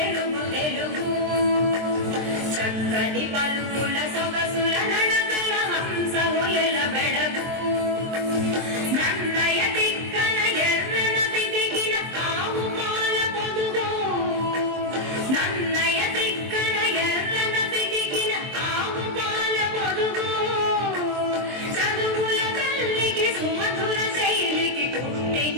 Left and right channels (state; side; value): late; left; 23 ms